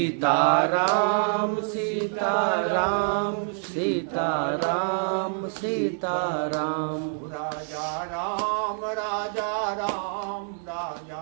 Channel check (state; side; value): silent; left; digital silence